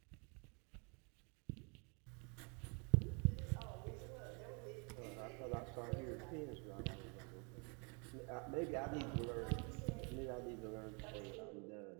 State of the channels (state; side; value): quieter; left; 34.2 dB